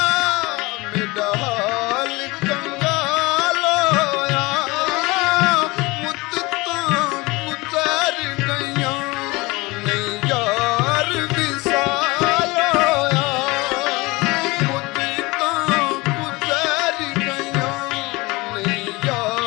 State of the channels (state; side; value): quieter; right; 23.3 dB